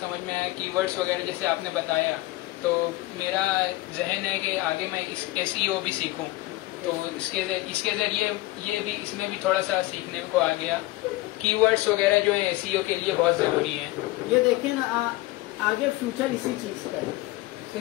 में आया कीवर्ड्स वगैरह जैसे आपने बताया, तो मेरा जहन है कि आगे मैं SEO भी सीखूं। तो इसके जरिए इसमें भी थोड़ा सा सीखने को आ गया। कीवर्ड्स वगैरह जो है SEO के लिए बहुत जरूरी है। ये देखिए ना, आगे फ्यूचर इसी चीज़ का है।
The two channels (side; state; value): right; quieter; 18.9 dB